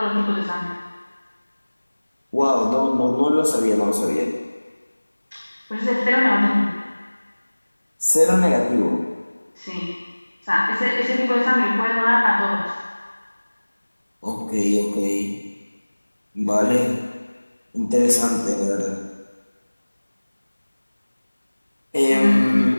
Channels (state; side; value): inverted; both; correlation -1.00